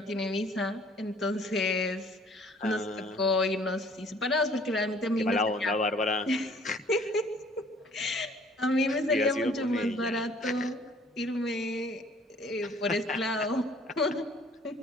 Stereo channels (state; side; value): normal; both; correlation 0.56